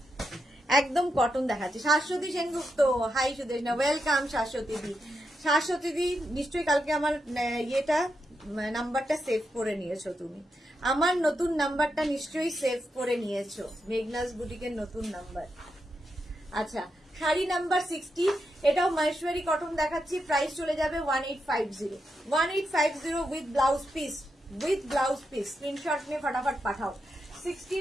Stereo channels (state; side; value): normal; both; correlation 0.85